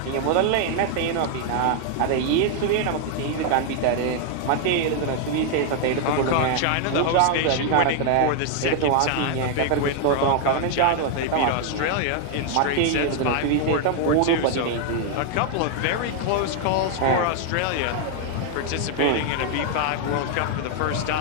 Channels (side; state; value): both; different; correlation 0.00